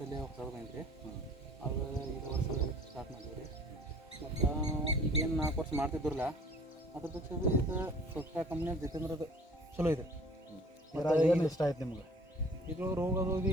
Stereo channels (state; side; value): normal; both; correlation 0.51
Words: ಹೊಸದು ಬಂದ್ರಿ. ಅದು ಈ ವರ್ಷ ಸ್ಟಾರ್ಟ್ ಮಾಡಿದ್ವಿ ರೀ. ಮತ್ತು ಈಗೇನು 4 ವರ್ಷ ಮಾಡ್ತಿದ್ರಲ್ಲ, ಅದ್ರ ಪಕ್ಷ ಇದು ಟೊಕೆಟಾ ಕಂಪ್ನಿಯಾಗ ಜಿತೇಂದ್ರದ ಚಲೋ ಇದೆ. ಏನು ಇಷ್ಟ ಆಯ್ತು ನಿಮ್ಗೆ? ಇದು ರೋಗದು